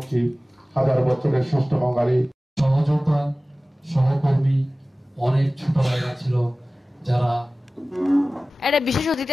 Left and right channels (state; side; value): normal; both; correlation 0.97